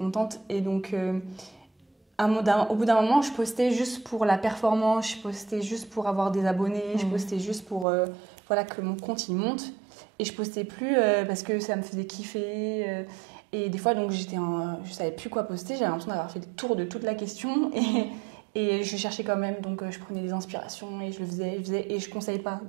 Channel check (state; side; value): drops out; left; at 7.9 s